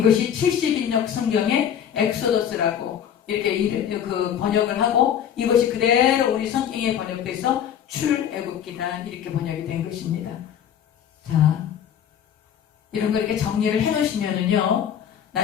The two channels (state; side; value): quieter; right; 9.1 dB